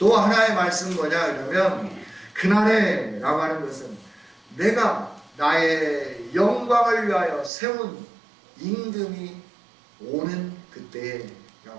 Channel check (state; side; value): drops out; left; at 7.5 s